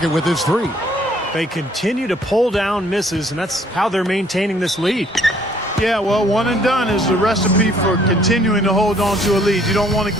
with his three. They continue to pull down misses, and that's how they're maintaining this lead. Yeah, well, one and done is the recipe for continuing to hold on to a lead. You don't want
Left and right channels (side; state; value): both; normal; correlation 0.62